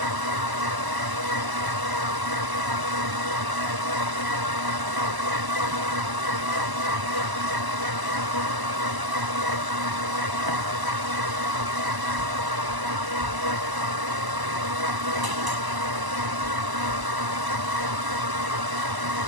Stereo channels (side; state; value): left; late; 1.0 ms